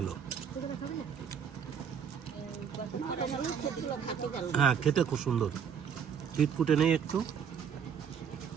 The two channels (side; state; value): left; quieter; 7.5 dB